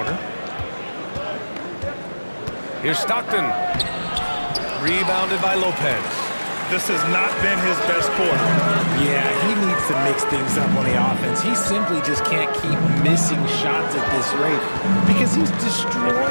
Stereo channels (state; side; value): inverted; both; correlation -1.00